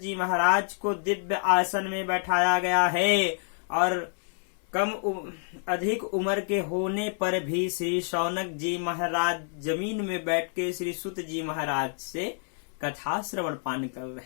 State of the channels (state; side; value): silent; right; digital silence